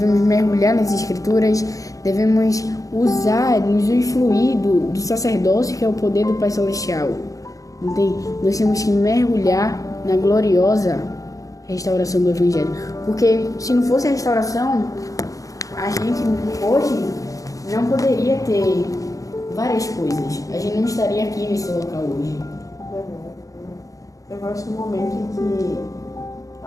mergulhar nas escrituras, devemos usar, nos influir do sacerdócio, que é o poder do Pai Celestial. Entende? Nós temos que mergulhar na gloriosa restauração do Evangelho. Porque se não fosse a restauração, a gente hoje não poderia ter várias coisas. A gente não estaria aqui nesse local hoje. Eu gosto do momento em que,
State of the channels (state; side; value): late; right; 0.16 ms